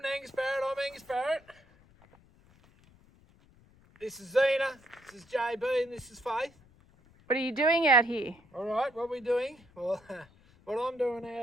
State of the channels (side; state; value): left; noise; rumble, 28 dB below the sound